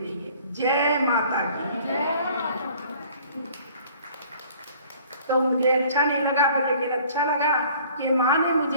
है। जय माता की। तो मुझे अच्छा नहीं लगा, लेकिन अच्छा लगा कि माँ ने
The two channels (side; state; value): both; inverted; correlation -0.53